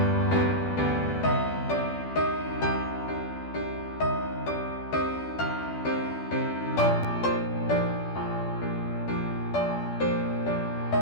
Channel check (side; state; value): right; late; 12 ms